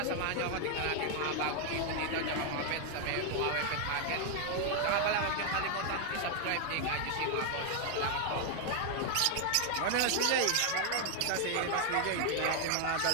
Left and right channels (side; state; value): both; different; correlation 0.00